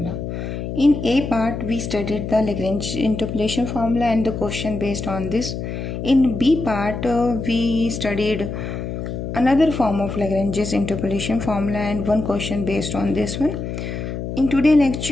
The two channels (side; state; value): left; noise; hum, 5 dB below the sound